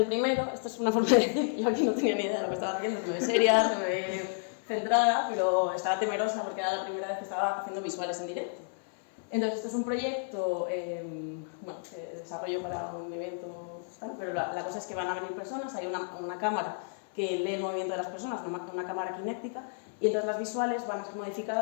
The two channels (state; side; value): silent; right; 57 dB below the other